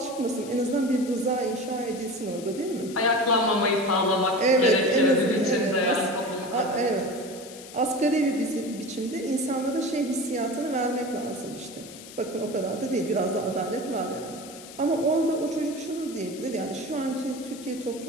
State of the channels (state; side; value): noise; left; hiss, 16 dB below the sound